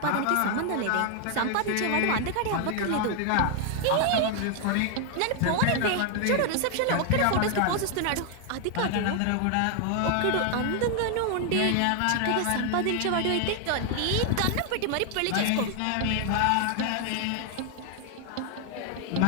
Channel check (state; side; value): different; both; correlation 0.00